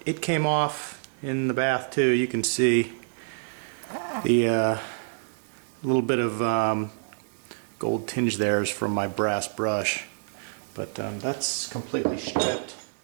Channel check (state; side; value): silent; left; digital silence